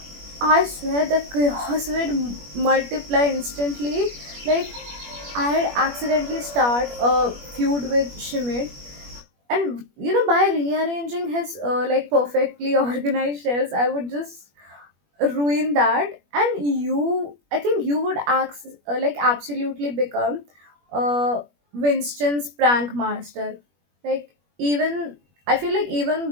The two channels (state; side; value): late; left; 21 ms